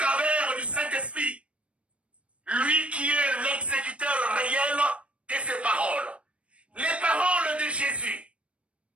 du Saint-Esprit. Lui qui est l'exécuteur réel de ses paroles. Les paroles de Jésus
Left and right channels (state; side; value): late; left; 0.061 ms